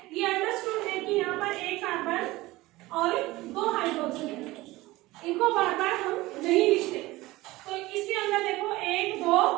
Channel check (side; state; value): left; quieter; 19.2 dB